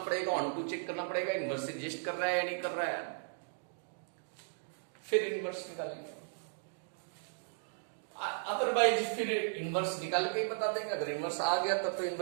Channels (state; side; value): silent; left; digital silence